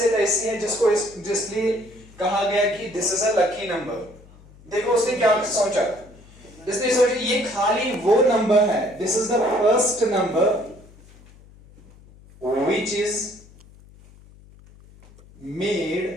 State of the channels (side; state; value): left; noise; hum, 24 dB below the sound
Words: ऐसी है जिसलिए कहा गया कि this is a lucky number. देखो उसने क्या सोचा. इसने सोचा ये खाली वो नंबर है, this is the first number which is made